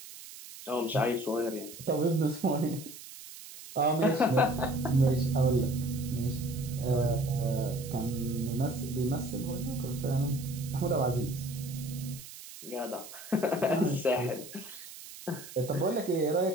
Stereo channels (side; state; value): right; noise; hiss, 15 dB below the sound